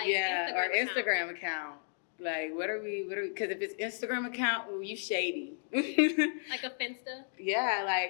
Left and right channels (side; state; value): right; silent; digital silence